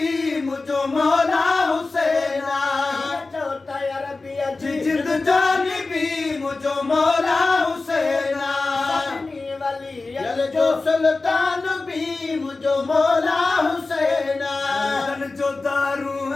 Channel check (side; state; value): right; quieter; 3.6 dB